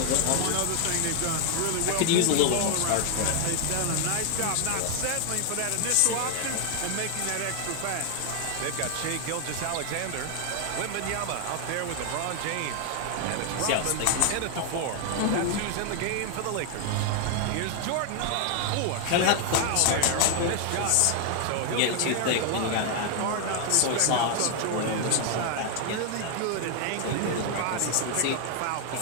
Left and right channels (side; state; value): both; different; correlation 0.00